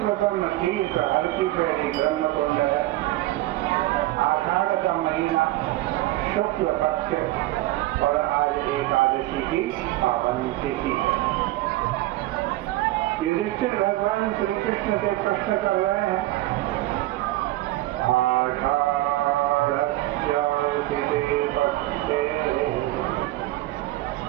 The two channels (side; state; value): left; quieter; 17.0 dB